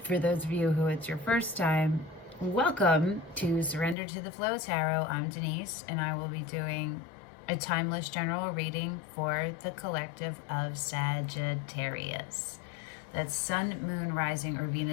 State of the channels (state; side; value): drops out; right; at 4.0 s